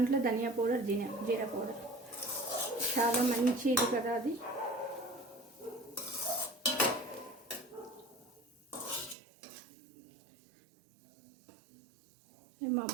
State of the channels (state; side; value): drops out; left; at 9.2 s